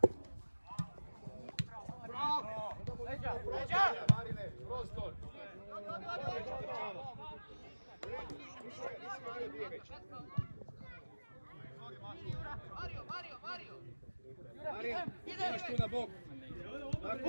Marine, prostor. Marija, imaš tu na bok.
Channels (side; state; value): both; inverted; correlation -1.00